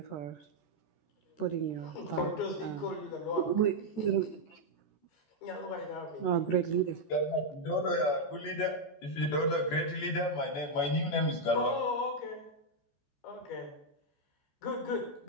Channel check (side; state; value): right; late; 14 ms